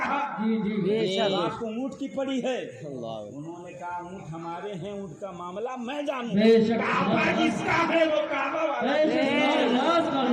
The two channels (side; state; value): both; identical; correlation 1.00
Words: जी जी बेशक। आपको ऊँट की पड़ी है। उन्होंने कहा ऊँट हमारे हैं, ऊँट का मामला मैं जानूं। बेशक। काबा जिसका है वो काबा वाला, मेरे